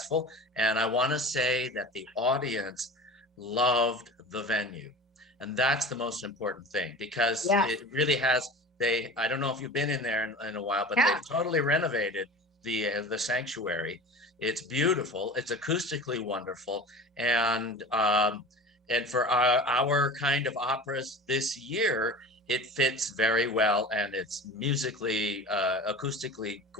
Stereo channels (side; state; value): both; normal; correlation 0.35